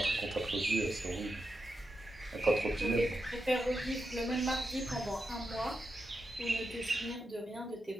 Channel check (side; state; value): both; normal; correlation 0.87